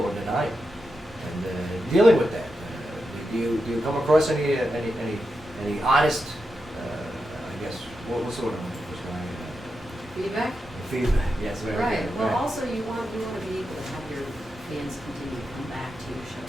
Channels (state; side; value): normal; both; correlation 0.88